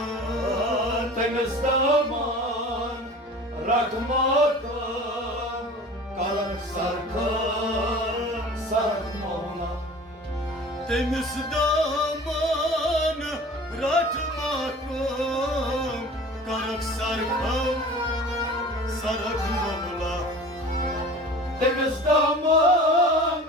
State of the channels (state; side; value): normal; both; correlation 0.41